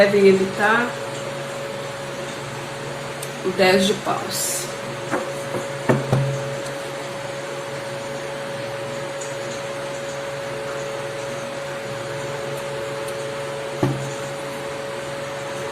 evitar, o 10 de paus.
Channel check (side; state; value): both; identical; correlation 1.00